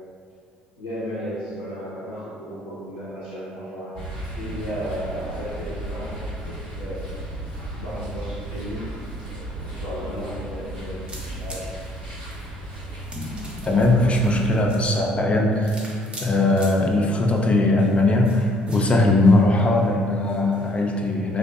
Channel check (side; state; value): both; normal; correlation 0.64